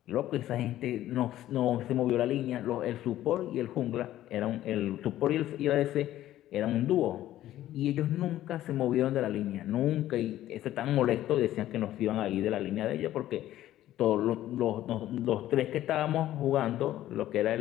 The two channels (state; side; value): quieter; right; 13.6 dB